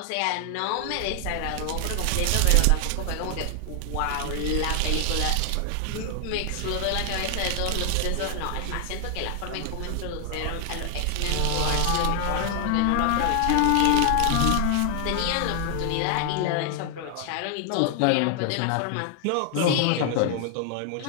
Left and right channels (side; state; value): both; different; correlation 0.00